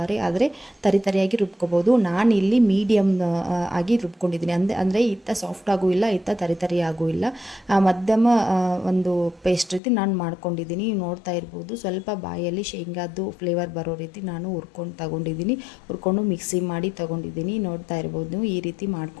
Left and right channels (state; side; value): drops out; right; at 9.8 s